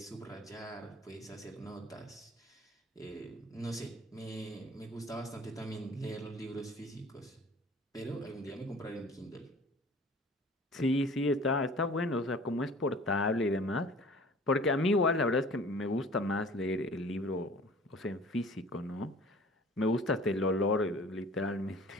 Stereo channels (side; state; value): both; normal; correlation 0.47